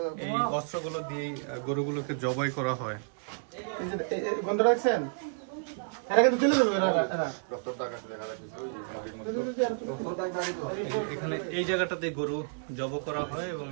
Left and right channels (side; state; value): left; silent; digital silence